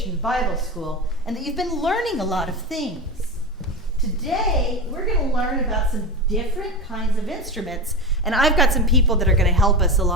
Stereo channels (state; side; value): normal; both; correlation 0.22